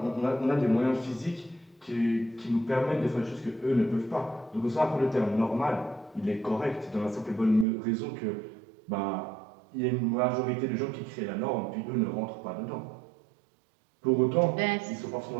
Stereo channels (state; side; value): drops out; left; at 7.7 s